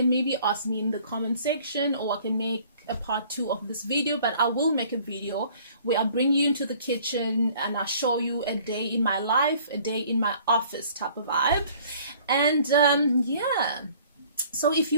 maybe ask me in the comment section, or I can make a part 2 of this video. But I will make a video where I bring you into the kitchen and I show you a day in my life, a day in my office type of vibe. And yeah, so if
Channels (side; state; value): both; inverted; correlation -0.54